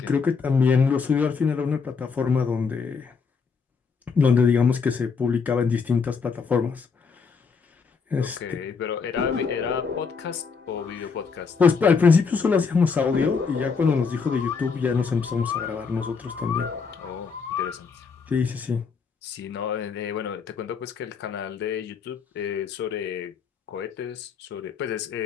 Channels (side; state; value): right; quieter; 5.4 dB